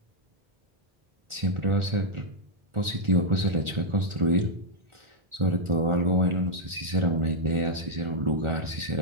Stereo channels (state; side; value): late; left; 1.4 ms